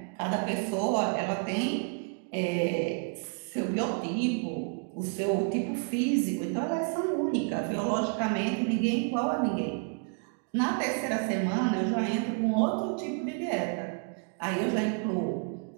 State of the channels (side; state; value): left; quieter; 38.2 dB